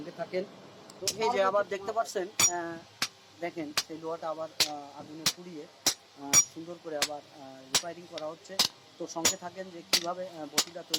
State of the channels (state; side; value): identical; both; correlation 1.00